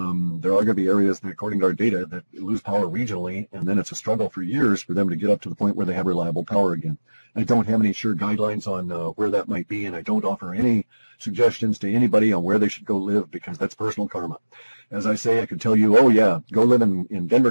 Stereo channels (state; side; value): inverted; both; correlation -1.00